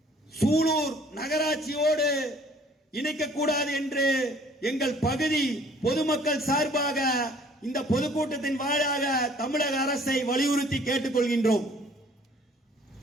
சூலூர் நகராட்சியோடு இணைக்கக்கூடாது என்று எங்கள் பகுதி பொதுமக்கள் சார்பாக இந்த பொதுக்கூட்டத்தின் வாயிலாக தமிழக அரசை வலியுறுத்தி கேட்டுக்கொள்கின்றோம்.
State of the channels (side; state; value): both; normal; correlation 0.56